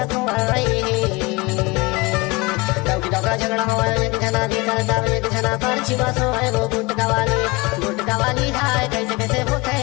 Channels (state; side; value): quieter; right; 25.0 dB